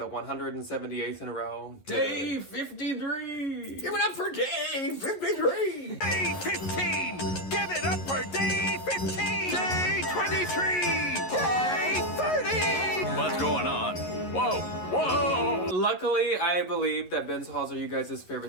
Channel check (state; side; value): late; right; 11 ms